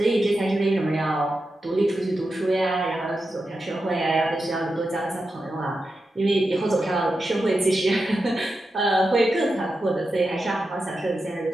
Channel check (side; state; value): both; normal; correlation 0.90